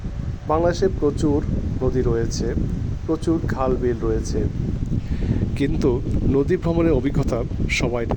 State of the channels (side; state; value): both; identical; correlation 1.00